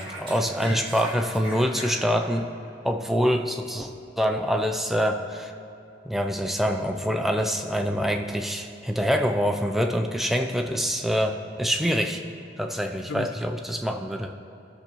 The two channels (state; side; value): normal; both; correlation 0.79